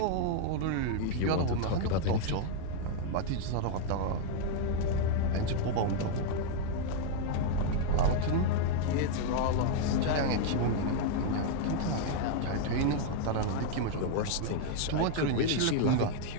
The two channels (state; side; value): different; both; correlation 0.00